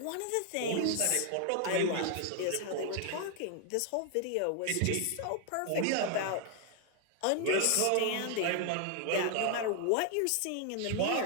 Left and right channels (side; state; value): both; different; correlation 0.00